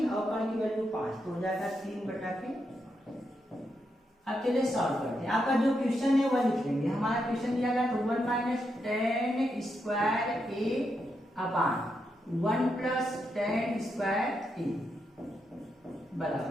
और कर्ण की वैल्यू 5, तो हो जाएगा 3/5। अब चलिए सॉल्व करते हैं। आपका जो क्वेश्चन है वह लिख लेंगे। हमारा क्वेश्चन दिया गया तो 1 - tan square a upon 1 + tan square a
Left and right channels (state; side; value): normal; both; correlation 0.83